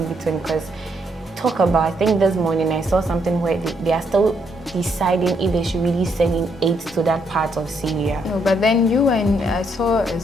between. Because I think this morning I saw something where they are still deciding if they should really send in aid to that part of Syria. No, but then I saw a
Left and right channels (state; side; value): normal; both; correlation 0.74